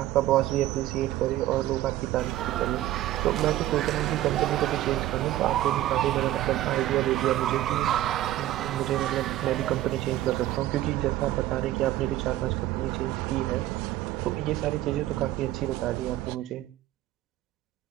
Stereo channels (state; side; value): quieter; left; 14.4 dB